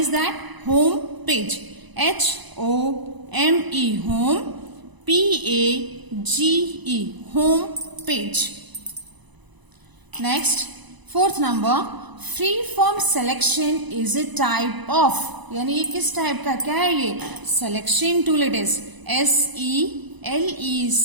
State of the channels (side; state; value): left; late; 1.0 ms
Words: that? Home page. HOME home, PAGE home page. Next fourth number. Free form selection is a type of. यानी ये किस टाइप का, क्या है ये? Selection tool. It is